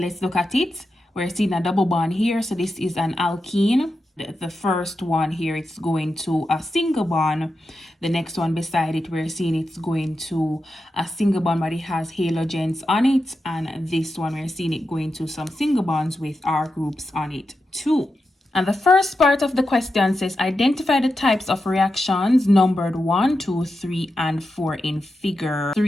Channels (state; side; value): normal; both; correlation 0.89